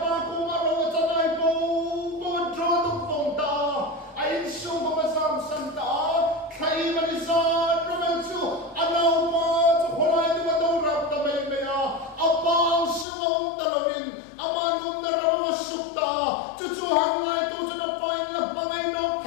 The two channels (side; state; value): right; drops out; at 13.1 s